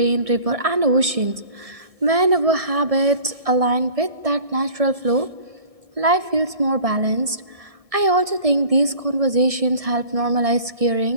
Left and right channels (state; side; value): late; left; 1.6 ms